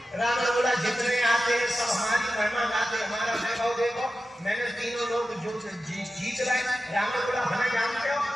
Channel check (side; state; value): both; normal; correlation 0.93